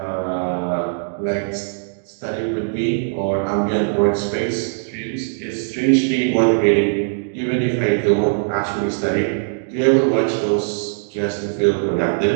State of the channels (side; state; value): left; silent; digital silence